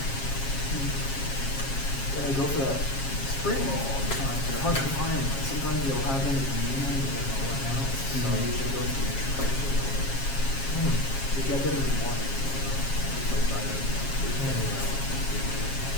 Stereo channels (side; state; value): right; late; 7.4 ms